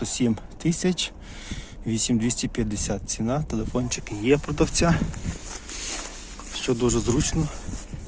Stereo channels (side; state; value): both; identical; correlation 1.00